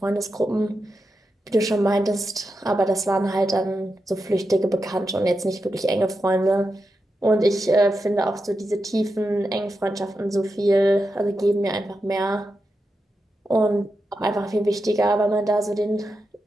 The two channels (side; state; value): both; normal; correlation 0.88